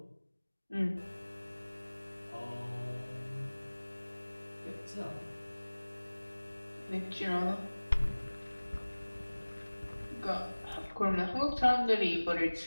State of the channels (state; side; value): inverted; both; correlation -1.00